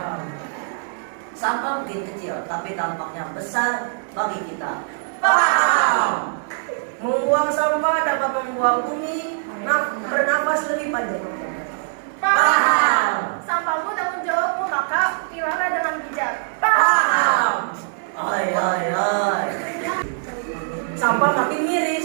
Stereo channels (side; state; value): left; silent; 64 dB below the other